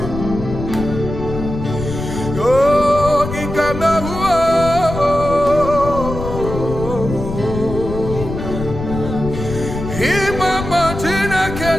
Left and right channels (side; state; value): left; noise; rumble, 7 dB below the sound